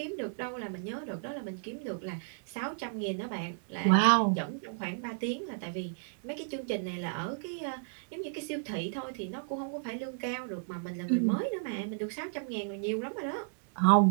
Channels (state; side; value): silent; left; digital silence